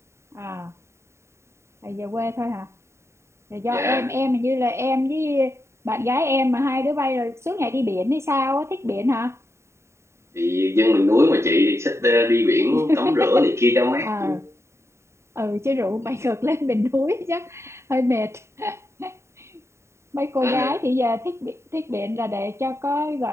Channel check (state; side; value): late; left; 0.13 ms